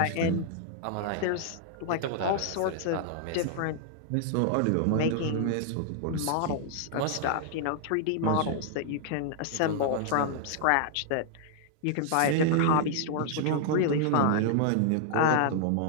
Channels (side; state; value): both; different; correlation -0.01